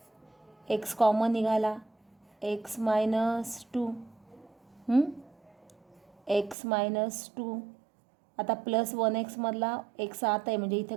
एक्स कॉमन निघाला, एक्स मायनस 2. X minus 2. आता प्लस 1x मधला एक्स आत आहे म्हणजे इथे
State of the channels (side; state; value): left; drops out; at 6.6 s